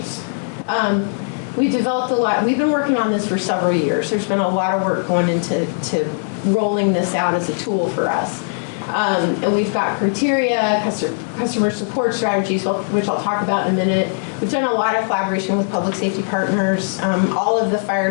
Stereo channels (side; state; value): right; silent; 66 dB below the other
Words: We developed a lot. We've been working on this for several years. There's been a lot of work going into rolling this out as a tool for us. And we've got criteria, customer support strategies, which I'll talk about in a minute. We've done a lot of collaboration with public safety partners. All of the fire